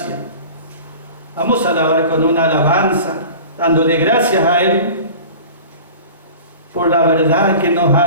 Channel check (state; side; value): inverted; both; correlation -0.39